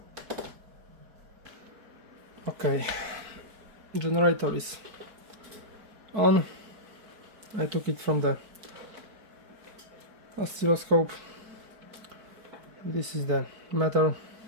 Okay, generator is on. I took it from the oscilloscope. This is the meter.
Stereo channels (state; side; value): late; left; 4.6 ms